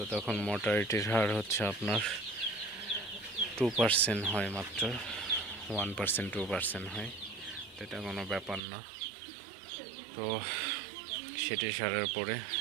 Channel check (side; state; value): left; drops out; at 8.6 s